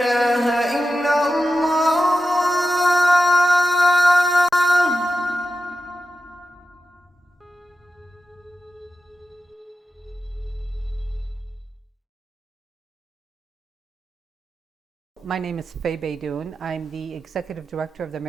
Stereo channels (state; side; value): normal; both; correlation 0.91